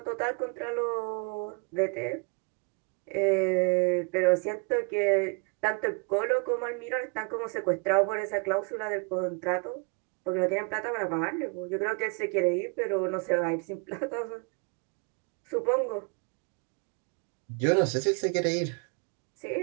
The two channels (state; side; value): quieter; left; 34.9 dB